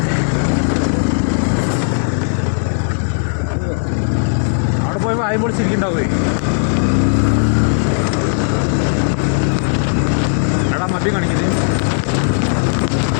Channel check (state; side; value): silent; right; digital silence